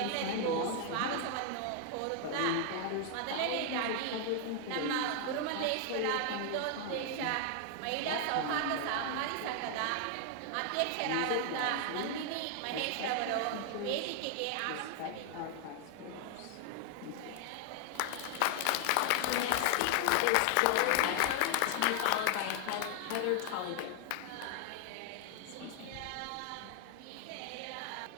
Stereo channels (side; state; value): both; different; correlation 0.00